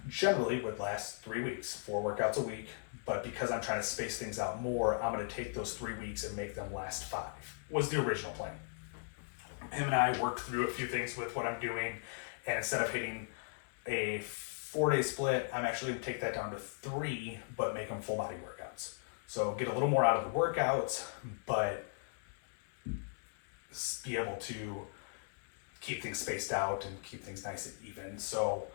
generally would last 3 weeks, 4 workouts a week. But because I'm trying to space things out more, I'm going to take those 3 weeks and make them last 5, was the original plan. him and I worked through a few things with what I'm doing, and instead of hitting a 4-day split, I'm actually going to take that down to 3, but make them full body workouts. So get a little more out of the workouts, but be able to keep things spaced out and keep things nice and even. So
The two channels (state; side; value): silent; right; 53 dB below the other